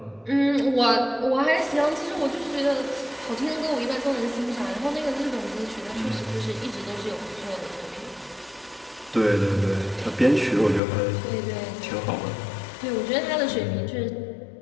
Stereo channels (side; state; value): right; drops out; at 10.8 s